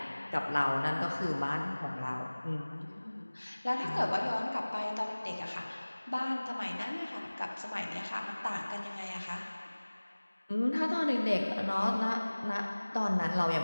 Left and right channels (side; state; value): both; inverted; correlation -1.00